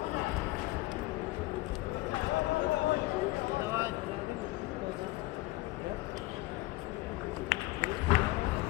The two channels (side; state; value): right; quieter; 20.0 dB